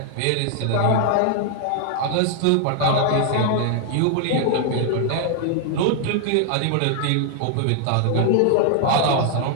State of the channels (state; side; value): different; both; correlation 0.00